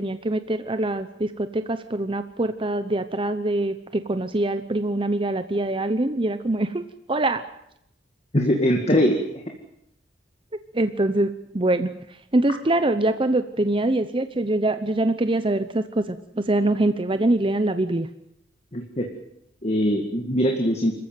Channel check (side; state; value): both; normal; correlation 0.66